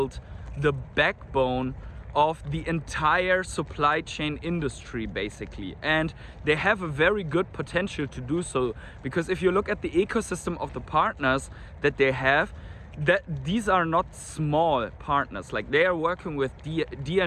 the backbone of the entire supply chain industry basically, and they have a very good potential to do so, because if you look at the ecosystem of the partners that they have, that these are not small partners. Like, they are working with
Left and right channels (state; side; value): identical; both; correlation 1.00